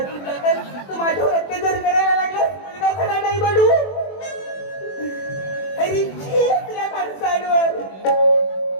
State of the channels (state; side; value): late; right; 21 ms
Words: जातात तू माझ्यावर अत्याचार करायला लागला मुलगा सगळा नाही बनू अरे छी आपल्या माणसांवर